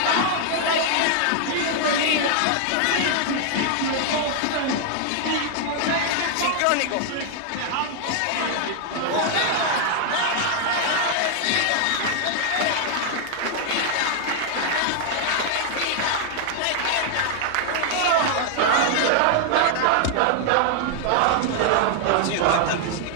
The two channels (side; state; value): both; different; correlation 0.00